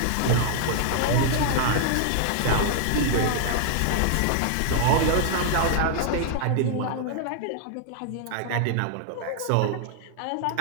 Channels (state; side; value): different; both; correlation 0.00